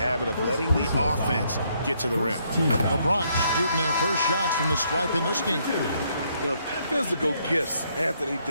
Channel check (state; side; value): inverted; both; correlation -0.72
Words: of letting the offense get to the rim. The Bronx shooting their first shots from the stripe in this game. The physical gifts Anthony